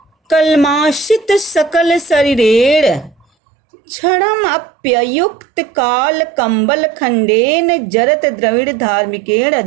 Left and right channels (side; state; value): left; drops out; at 3.2 s